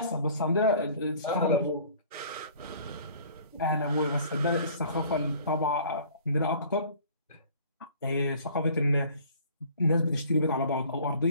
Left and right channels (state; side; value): inverted; both; correlation -0.51